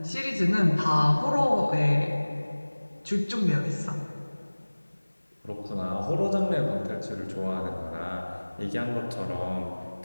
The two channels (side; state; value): both; inverted; correlation -1.00